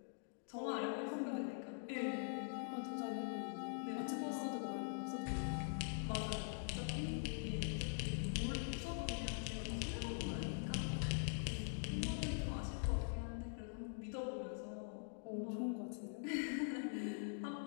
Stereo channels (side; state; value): right; silent; digital silence